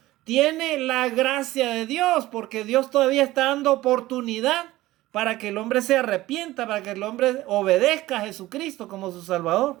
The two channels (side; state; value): left; quieter; 17.0 dB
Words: tiene la gracia de Dios, porque Dios todavía está dando oportunidad para que el hombre se arrepienta, para que el hombre obedezca a Jesucristo como su